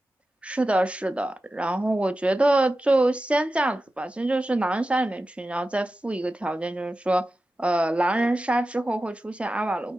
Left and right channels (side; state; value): both; normal; correlation 0.93